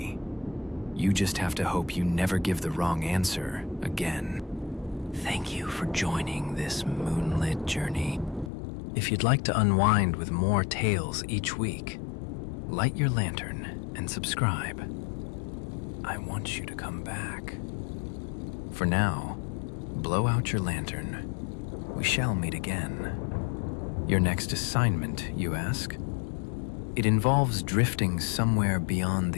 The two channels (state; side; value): drops out; right; at 8.5 s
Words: You just have to hope you never give the wrong answer again. Thank you for joining this moonlit journey. If you'd like to unwind with more tales each week, light your lantern and subscribe. I want you to come back. For now, blow out your lantern. We shall meet again. Your next assignment, you ask? It involves drifting somewhere beyond